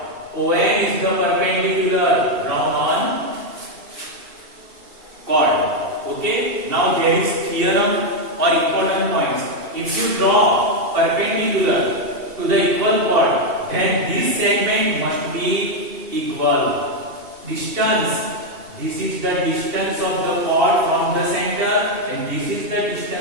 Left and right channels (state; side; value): late; left; 2.7 ms